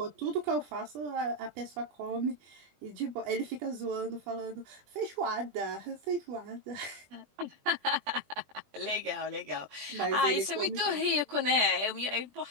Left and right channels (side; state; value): left; late; 20 ms